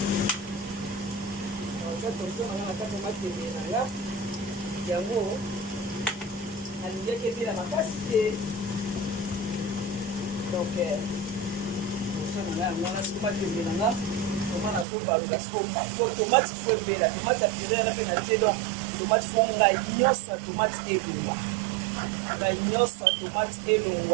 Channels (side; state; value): left; drops out; at 14.9 s